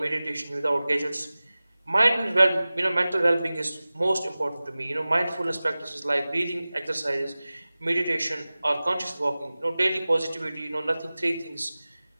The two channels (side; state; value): both; inverted; correlation -0.98